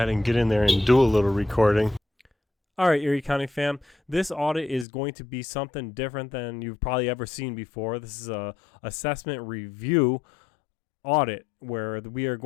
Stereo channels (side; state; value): right; drops out; at 4.9 s